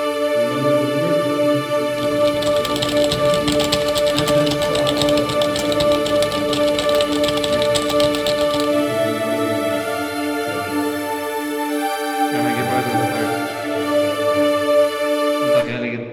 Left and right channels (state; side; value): identical; both; correlation 1.00